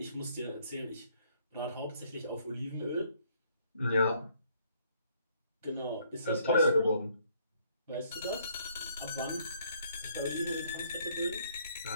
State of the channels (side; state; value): both; inverted; correlation -0.65